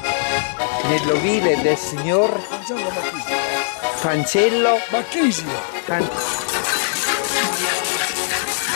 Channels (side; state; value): right; silent; digital silence